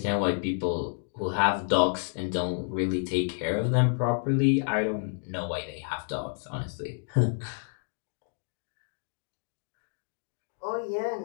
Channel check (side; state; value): right; silent; 58 dB below the other